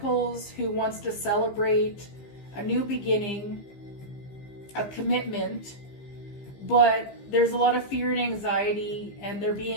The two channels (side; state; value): right; late; 15 ms